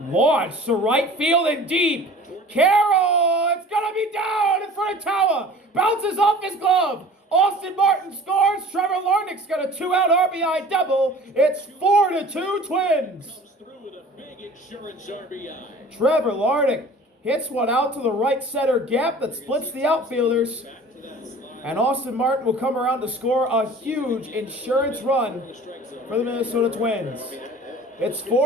to right field and deep. Carroll, it's going to be down in front of Tower. Bounces off his glove. Austin Martin scores. Trevor Larnach's got a 2-out RBI double. It's 4-2 Twins. Comes through with a big insurance RBI. Trevor Larnach hits one out to the right center gap that splits the outfielders. Back to that slider. And Austin Martin will come around to score a huge insurance run The strike zone. for the Minnesota Twins. It's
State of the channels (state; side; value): normal; both; correlation 0.44